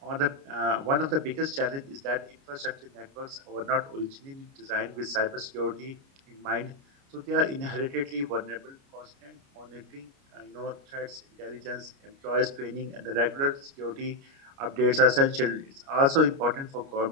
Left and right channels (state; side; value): late; left; 29 ms